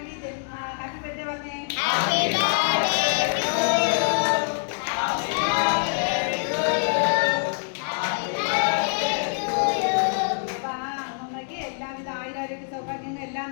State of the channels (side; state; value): right; silent; 62 dB below the other